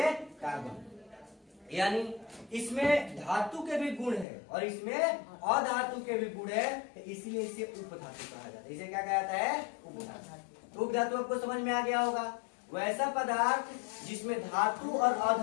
कार्बन। यानी इसमें धातु के भी गुण है और इसमें अधातु के भी गुण है, इसलिए इसे उपधातु कहा जाता है। इसे क्या कहा जाता है? उपधातु। उपधातु आपको समझ में आ गया होगा। वैसा पदार्थ जिसमें धातु और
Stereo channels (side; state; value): right; drops out; at 4.2 s